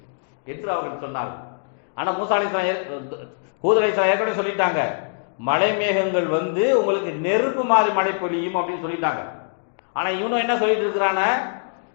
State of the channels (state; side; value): silent; right; digital silence